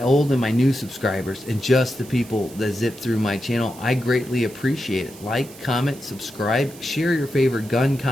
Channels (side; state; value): right; noise; hiss, 19 dB below the sound